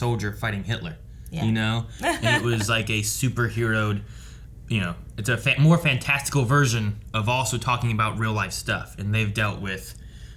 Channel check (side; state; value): both; identical; correlation 1.00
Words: fighting Hitler. Yeah. You know? And it was like a superheroed, you know, it's a more fantastical version of also talking about real life stuff. And they've dealt with